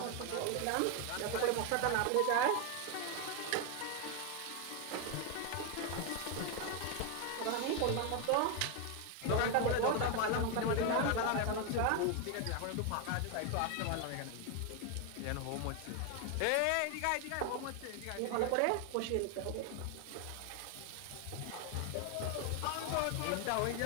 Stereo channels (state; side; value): different; both; correlation 0.01